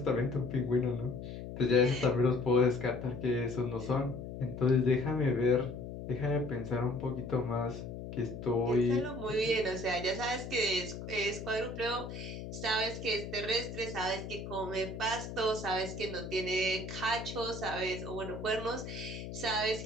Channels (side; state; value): left; noise; hum, 8 dB below the sound